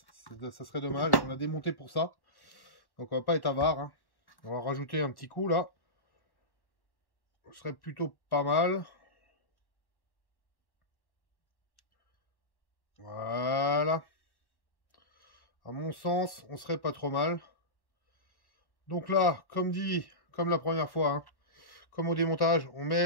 Ça serait dommage. On a démonté pour ça. Donc on va pas être avare, hein. On va rajouter un petit coup là. Ce serait plutôt pas mal. Voilà. À mon sens, on serait pas trop mal. Donc là, comme dit, comme la première fois, hein, comme au démontage, on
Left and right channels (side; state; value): right; late; 1.1 ms